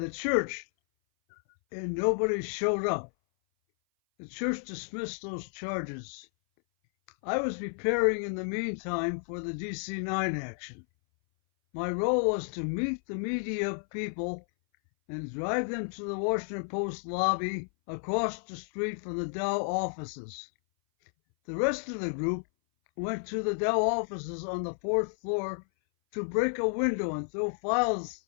church, and nobody showed up. The church dismissed those charges. I was preparing in the meantime for the DC-9 action. My role was to meet the media people and drive them to the Washington Post lobby across the street from the Dow offices. The rest of the group went to the Dow offices on the 4th floor to break a window and throw files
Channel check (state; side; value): silent; right; 57 dB below the other